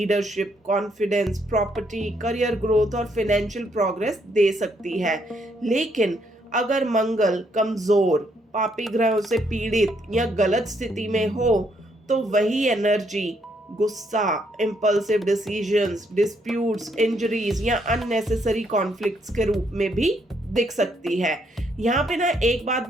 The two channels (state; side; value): normal; both; correlation 0.73